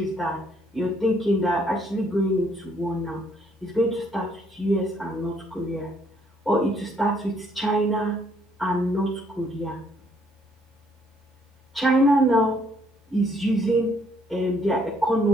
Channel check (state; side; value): normal; both; correlation 0.67